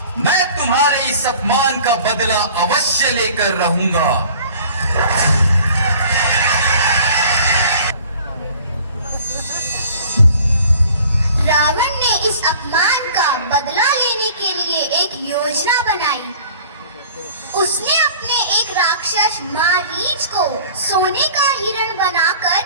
मैं तुम्हारे इस अपमान का बदला अवश्य लेकर रहूंगा। रावण ने इस अपमान का बदला लेने के लिए एक योजना बनाई। उसने अपने एक राक्षस मारीच को सोने का हिरण बनाकर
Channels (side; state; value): both; inverted; correlation -0.48